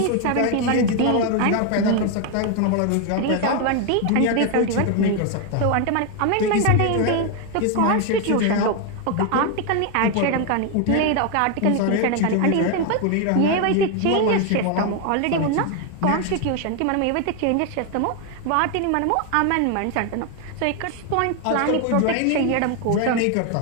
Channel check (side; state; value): both; different; correlation 0.01